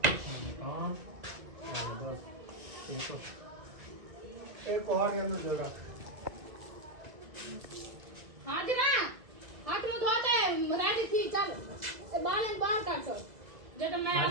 एक कोहर के अंदर जगह हाथ दिना हाथ मुंह धोते रेडी थी चल बाल बाहर काट सो जब मैं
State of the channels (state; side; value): late; left; 2.0 ms